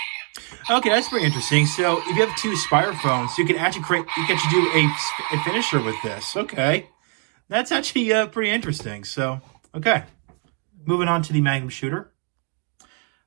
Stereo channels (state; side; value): quieter; left; 35.7 dB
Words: Okay, that's pretty interesting. So, if you have 2 SpiderPhones, you can actually do a finisher with this. Okay, that's actually pretty interesting. So, okay, moving on to the Magnum Shooter.